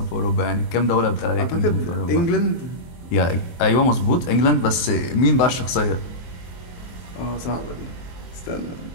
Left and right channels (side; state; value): right; late; 23 ms